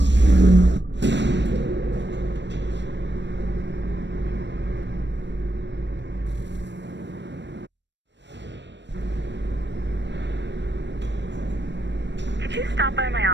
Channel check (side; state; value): left; late; 0.52 ms